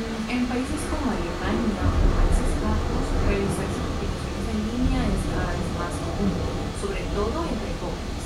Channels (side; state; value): both; identical; correlation 1.00